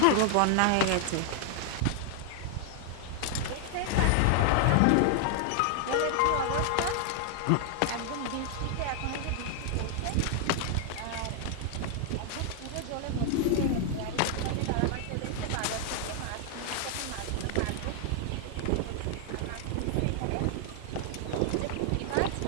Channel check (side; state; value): both; different; correlation 0.00